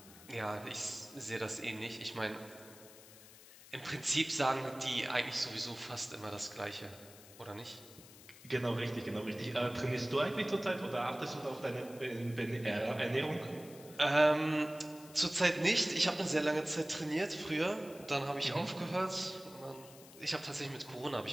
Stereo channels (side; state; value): left; noise; hiss, 19 dB below the sound